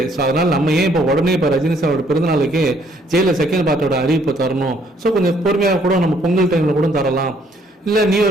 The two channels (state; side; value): normal; both; correlation 0.65